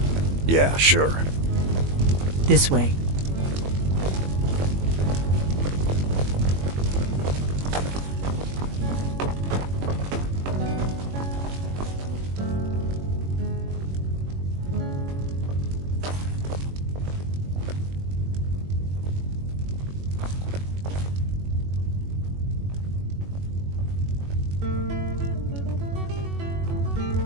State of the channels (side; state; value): left; late; 21 ms